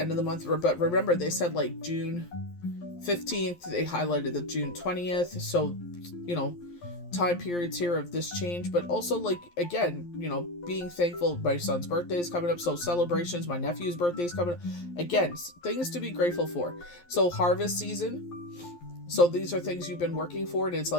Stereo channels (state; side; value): late; right; 11 ms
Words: of the month. But remember, they said like June 15th. They highlighted the June 20th. So, you know, time periods here of this change, but also, like, again, you know, being thankful. My son's birthday is coming up, so celebrations. My nephew's birthday is coming up. Again, things to be grateful for. So harvest season. So these are things you've been working for, and it's